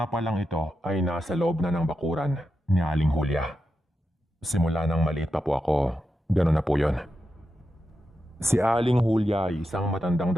pa lang ito ay nasa loob na ng bakuran ni Aling Julia. Simula nang maliit pa po ako, gano'n na po yon. Si Aling Julia ay isang matandang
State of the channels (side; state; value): both; normal; correlation 0.88